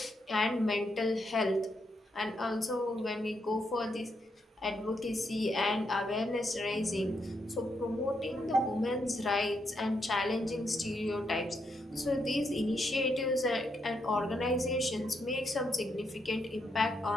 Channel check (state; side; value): normal; both; correlation 0.79